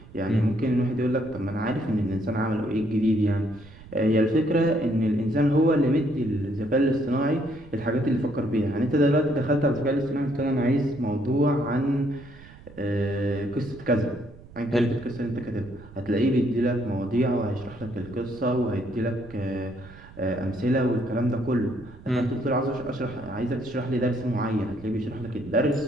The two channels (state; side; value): noise; right; rumble, 20 dB below the sound